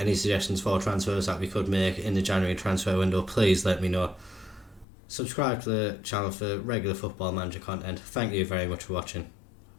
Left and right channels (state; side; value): drops out; right; at 4.9 s